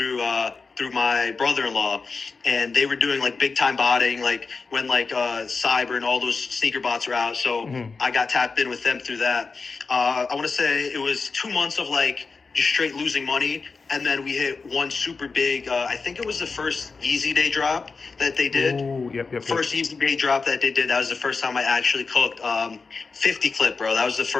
my brother-in-law, and they were doing big time botting, when Cyber and all those sneaker bots were out. So I got tapped in with them through that. I want to say it was 2 months of just straight losing money. And then we hit one super big, I think it was the first Yeezy Day drop that they did. Ooh, yep. First Yeezy Day drop that they did. That was the first time I actually cooked 50 clip, bro. That was the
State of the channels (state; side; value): quieter; right; 4.5 dB